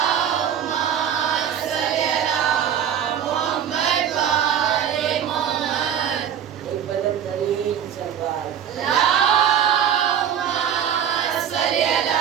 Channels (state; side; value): quieter; left; 9.1 dB